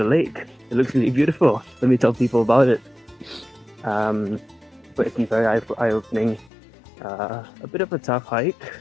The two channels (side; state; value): right; drops out; at 6.5 s